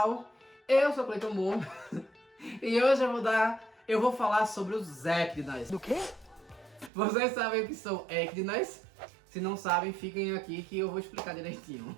Eu sou Cleiton Moore e hoje eu vou falar sobre os Ecdinas. Do quê? Vocês sabem o que são Ecdinas? Se não sabem, fiquem aqui que eu vou explicar direitinho.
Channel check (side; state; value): left; drops out; at 6.9 s